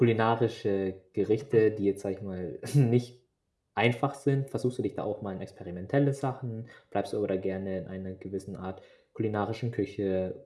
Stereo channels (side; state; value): both; identical; correlation 1.00